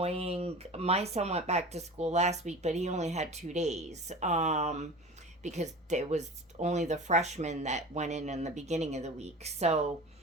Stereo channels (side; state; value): both; normal; correlation 0.36